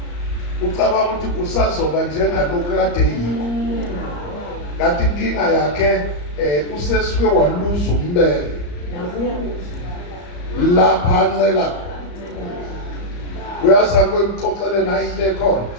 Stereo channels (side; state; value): right; late; 34 ms